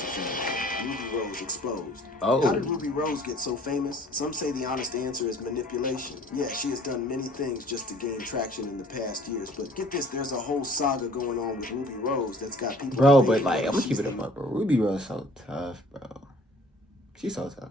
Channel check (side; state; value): both; normal; correlation 0.52